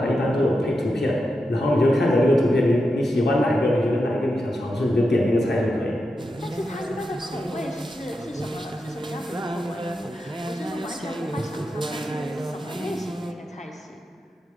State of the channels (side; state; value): both; normal; correlation 0.88